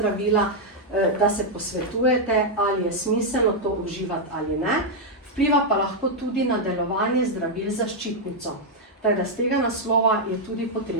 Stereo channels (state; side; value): normal; both; correlation -0.02